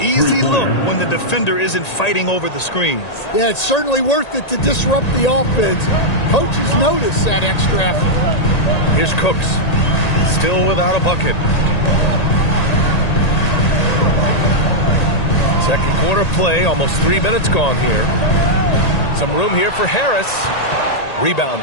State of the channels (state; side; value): late; right; 1.8 ms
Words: look when the defender isn't fighting over the screens. Yeah, it's certainly worth it to disrupt the offense. Coaches notice that extra effort. Here's Cooks. Still without a bucket. Second quarter play, almost 3 minutes gone here. Some room here for Harris. Rebound